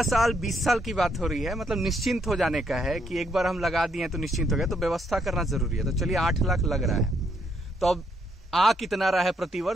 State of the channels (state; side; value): normal; both; correlation 0.73